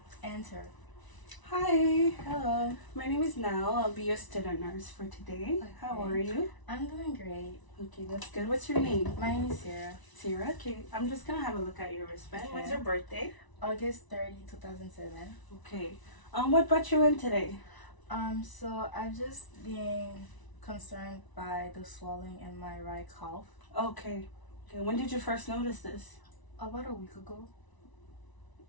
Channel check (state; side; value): late; right; 1.0 ms